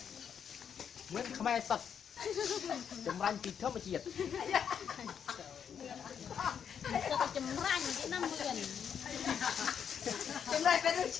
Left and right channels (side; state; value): right; quieter; 7.8 dB